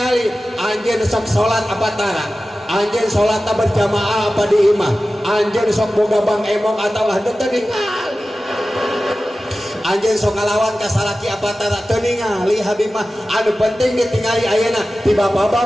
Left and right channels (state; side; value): normal; both; correlation 0.95